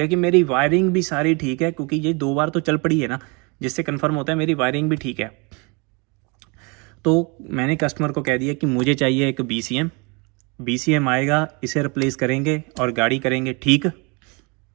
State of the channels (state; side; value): quieter; left; 30.5 dB